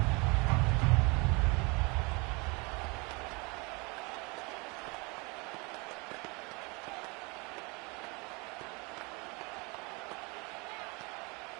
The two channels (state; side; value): quieter; left; 28.5 dB